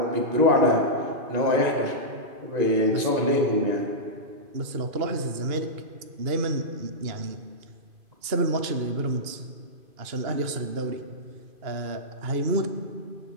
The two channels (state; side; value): late; left; 2.8 ms